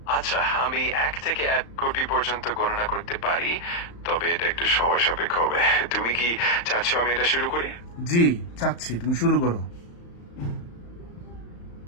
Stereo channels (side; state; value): right; late; 35 ms